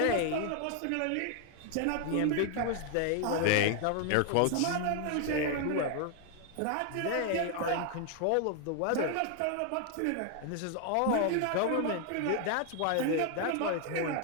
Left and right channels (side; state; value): both; different; correlation 0.00